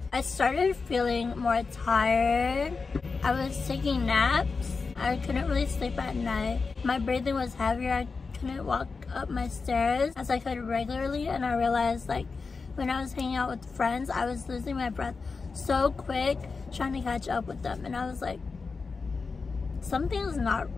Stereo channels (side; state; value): right; quieter; 4.5 dB